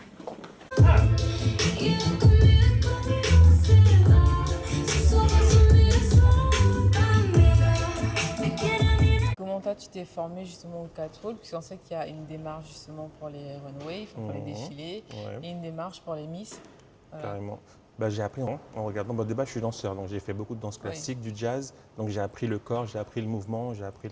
Comment toi, tu t'es formé justement au catwalk? Parce qu'on sait qu'il y a une démarche justement pour les runways, pour les défilés, et une démarche pour les Miss. Carrément. J'ai appris en regardant. De base, je suis danseur, donc j'ai fait beaucoup de danse classique, du jazz. Donc j'ai appris le corps, j'ai appris le mouvement, j'ai appris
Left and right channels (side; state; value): both; identical; correlation 1.00